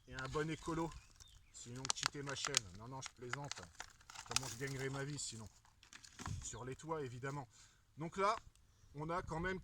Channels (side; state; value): both; identical; correlation 1.00